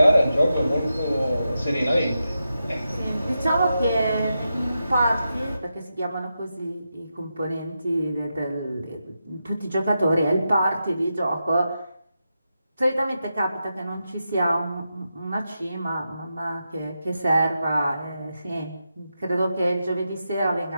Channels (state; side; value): inverted; both; correlation -0.88